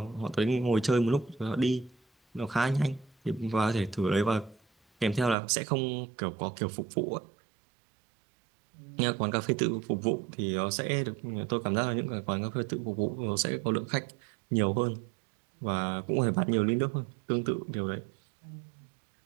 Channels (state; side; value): drops out; left; at 5.4 s